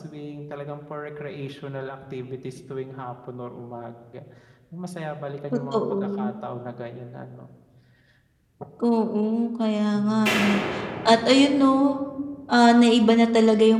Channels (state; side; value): identical; both; correlation 1.00